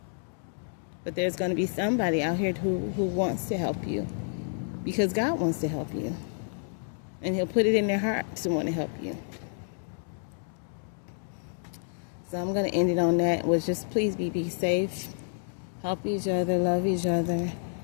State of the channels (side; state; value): right; silent; digital silence